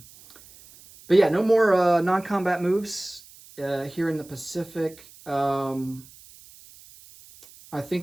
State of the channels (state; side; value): noise; right; hiss, 23 dB below the sound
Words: yeah, no more non-combat moves here in the Pacific. I